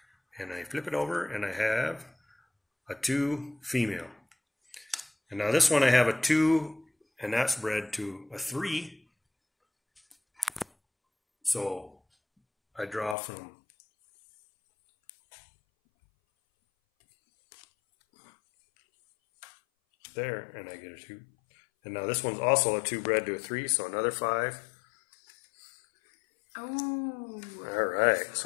And I flip it over, and I have a 2 female. And now this one I have a 2, and that's bred to a 3. So I draw from there, and I get a 2. And now this one's also a 2 bred to a 3, so another 5. Oh. All right,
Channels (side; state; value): right; drops out; at 13.2 s